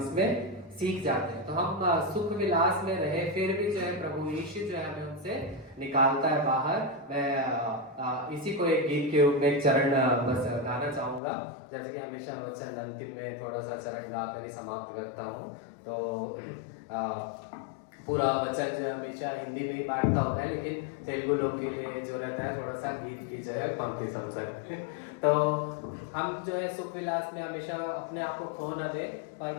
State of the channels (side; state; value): right; drops out; at 11.2 s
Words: सीख जाते हैं। तो हम सुख विलास में रहे फिर भी जो है प्रभु यीशु जो है हमें उनसे निकालता है बाहर। मैं इसी को एक गीत के रूप में एक चरण बस गाना चाहूंगा, जैसे कि हमेशा वचन अंतिम में थोड़ा सा चरण गा कर ही समाप्त करता हूँ। तो पूरा वचन जो हमेशा हिंदी में ही बांटता होता है, लेकिन तेलुगु लोग के लिए जो रहता है थोड़ा सा गीत की जो है पंक्ति समझ सकते हैं। तो हम जो है सुख विलास में हमेशा अपने आप को खो न दे, पर